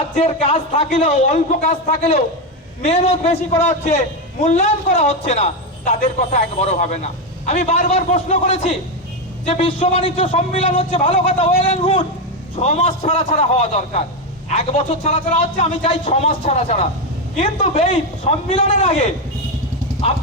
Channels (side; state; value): both; normal; correlation 0.09